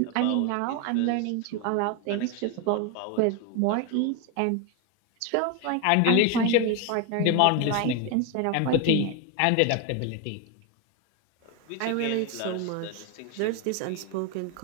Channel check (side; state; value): both; different; correlation 0.01